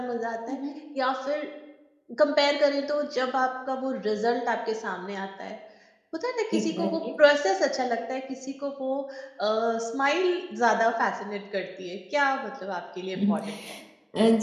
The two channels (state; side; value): identical; both; correlation 1.00